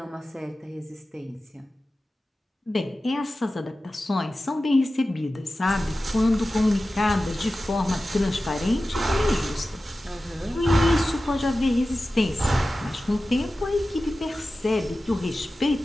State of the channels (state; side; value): normal; both; correlation 0.95